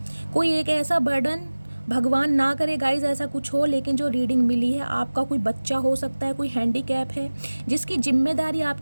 कोई एक ऐसा बर्डन, भगवान ना करे गाइज ऐसा कुछ हो, लेकिन जो रीडिंग मिली है, आपका कोई बच्चा हो सकता है, कोई हैंडीकैप है, जिसकी जिम्मेदारी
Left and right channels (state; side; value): inverted; both; correlation -1.00